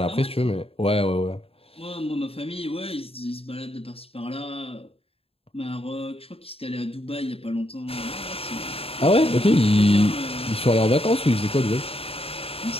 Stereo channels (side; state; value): right; late; 0.28 ms